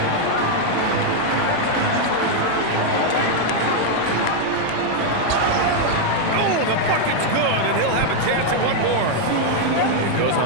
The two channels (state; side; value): different; both; correlation 0.00